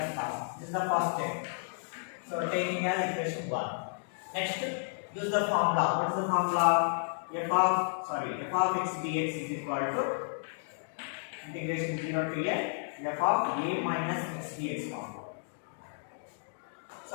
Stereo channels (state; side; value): silent; right; digital silence